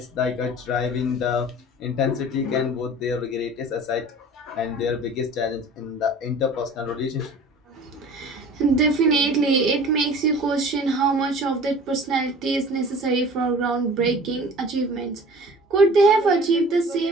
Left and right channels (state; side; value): normal; both; correlation 0.44